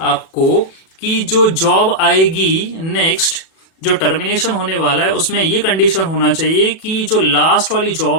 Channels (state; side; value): late; right; 37 ms